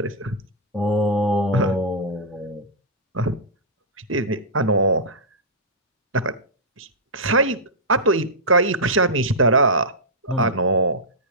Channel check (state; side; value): normal; both; correlation -0.13